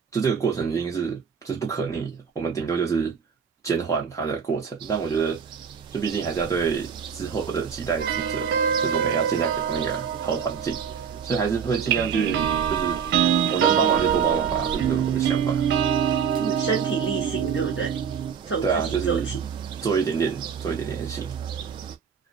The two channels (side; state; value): left; quieter; 6.9 dB